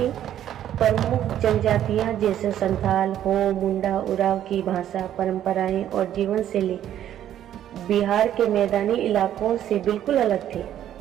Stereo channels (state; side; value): quieter; left; 11.2 dB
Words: प्रमुख जनजातियाँ जैसे संथाल, हो, मुंडा, उराव की भाषा, परंपराएं और जीवन शैली बिहार के मैदानी इलाकों से बिल्कुल अलग थी।